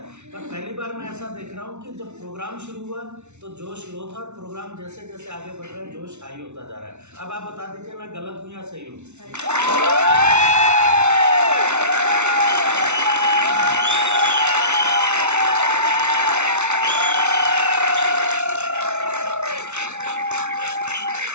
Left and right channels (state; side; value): late; left; 0.82 ms